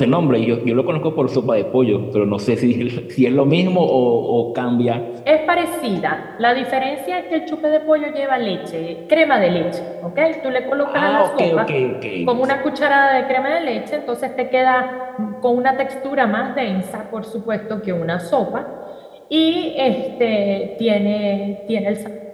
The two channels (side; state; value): both; identical; correlation 1.00